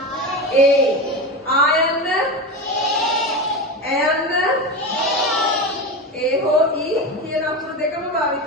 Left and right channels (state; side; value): normal; both; correlation 0.22